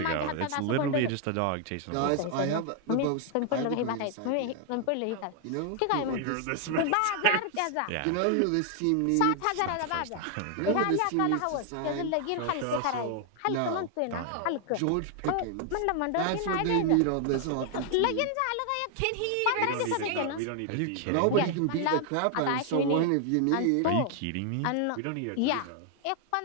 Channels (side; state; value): both; different; correlation 0.00